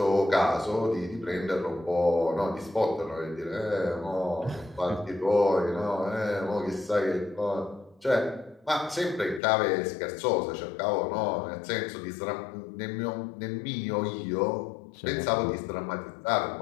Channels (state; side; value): drops out; right; at 9.4 s